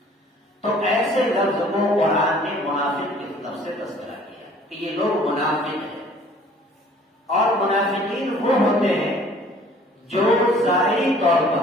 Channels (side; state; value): both; normal; correlation 0.53